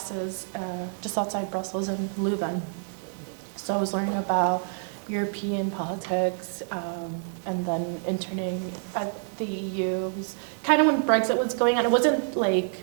just outside Brussels in Leuven. So I was learning about European politics, and then interning at the EU. It was kind of when Brexit was going on. It wasn't like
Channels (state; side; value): silent; left; digital silence